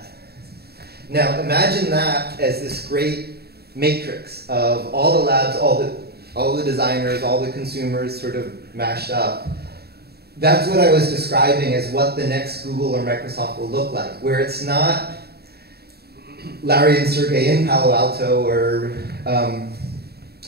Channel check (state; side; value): late; left; 0.46 ms